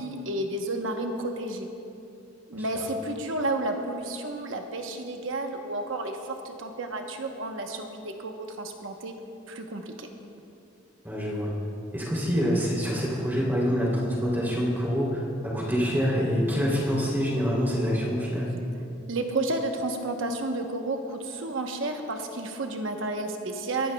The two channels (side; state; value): both; normal; correlation 0.51